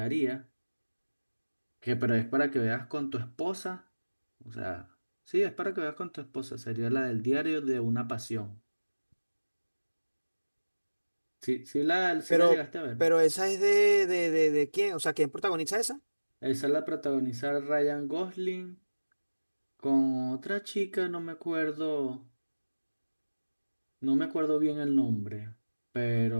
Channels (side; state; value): both; inverted; correlation -1.00